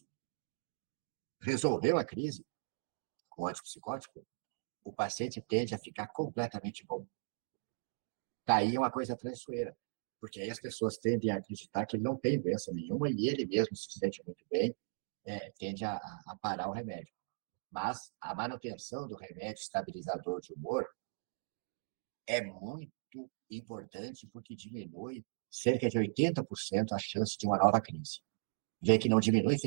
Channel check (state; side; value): silent; left; digital silence